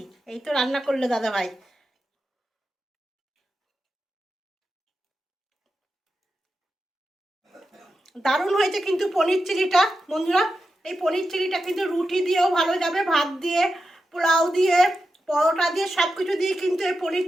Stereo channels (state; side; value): normal; both; correlation 0.90